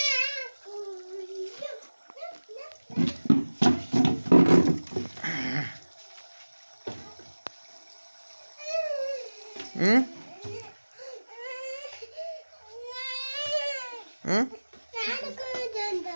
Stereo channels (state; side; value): inverted; both; correlation -1.00